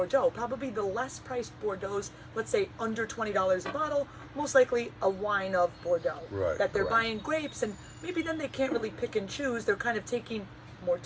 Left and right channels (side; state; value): both; identical; correlation 1.00